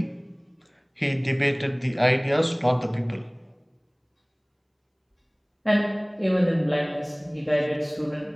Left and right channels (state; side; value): identical; both; correlation 1.00